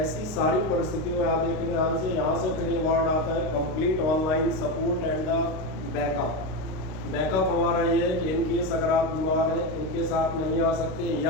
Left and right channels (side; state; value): right; late; 32 ms